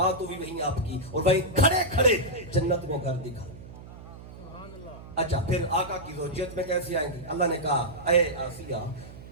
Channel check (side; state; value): right; noise; hum, 16 dB below the sound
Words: بھی وہیں آپ کی، اور وہیں کھڑے کھڑے جنت میں گھر دکھا۔ اچھا پھر آقا کی زوجیت میں کیسے آئیں گی؟ اللہ نے کہا اے آسیہ،